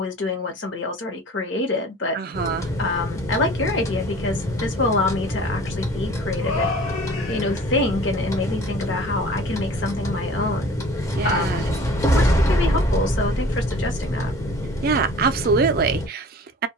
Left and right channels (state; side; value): normal; both; correlation 0.45